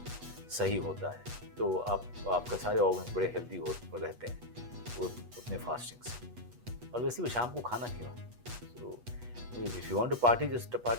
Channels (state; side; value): late; left; 8.3 ms